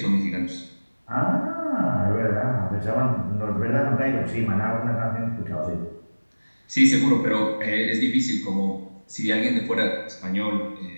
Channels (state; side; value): inverted; both; correlation -1.00